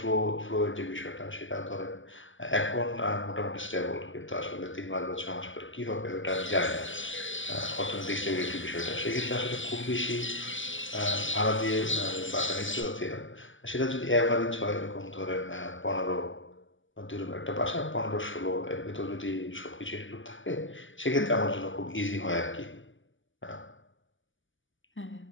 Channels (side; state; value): right; late; 0.56 ms